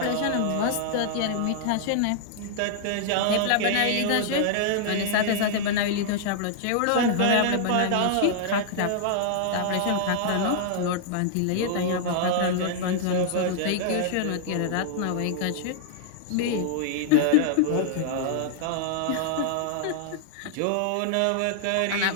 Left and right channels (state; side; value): different; both; correlation -0.01